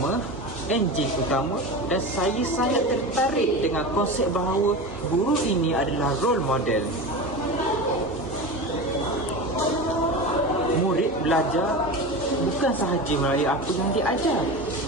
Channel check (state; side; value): normal; both; correlation 0.27